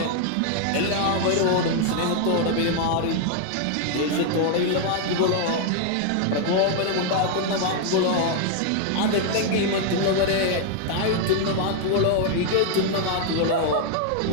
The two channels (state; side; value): different; both; correlation 0.00